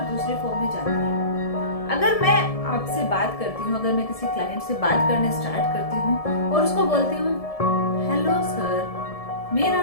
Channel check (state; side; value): late; right; 1.7 ms